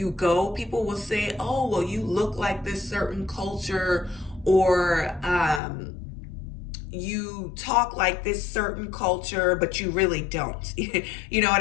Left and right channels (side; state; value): right; drops out; at 5.6 s